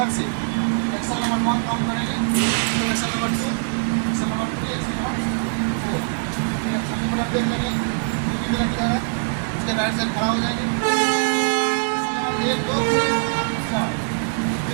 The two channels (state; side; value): silent; left; 64 dB below the other